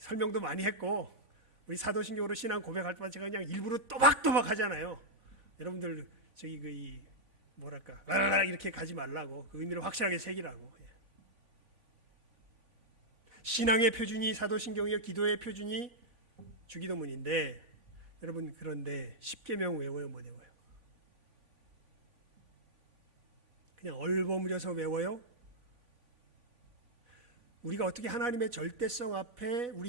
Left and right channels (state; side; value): late; left; 3.5 ms